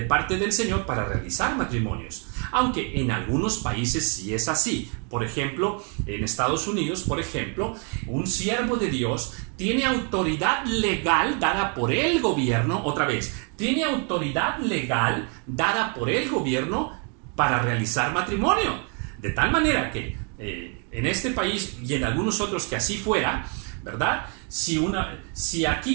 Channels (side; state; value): left; quieter; 38.3 dB